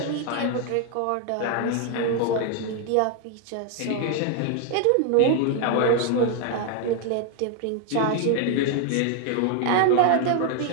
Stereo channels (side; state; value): both; different; correlation 0.00